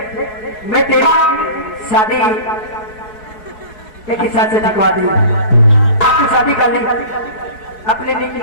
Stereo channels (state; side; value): late; right; 4.7 ms